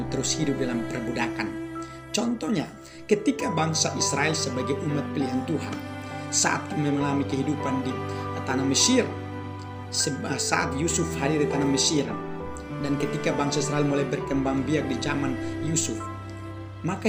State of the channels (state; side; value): identical; both; correlation 1.00